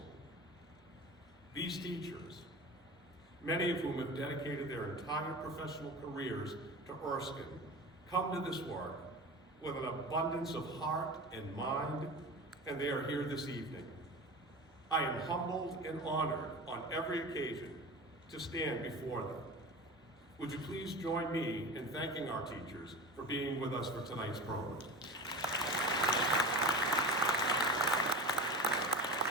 These teachers, many of whom have dedicated their entire professional careers to Erskine, come to this work with an abundance of heart and mind, and they are here this evening. I am humbled and honored on every occasion to stand before them. Would you please join me in thanking our teachers for being with us for tonight's program.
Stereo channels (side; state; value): both; normal; correlation 0.32